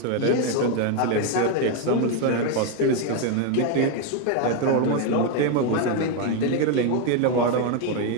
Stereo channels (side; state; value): both; different; correlation 0.01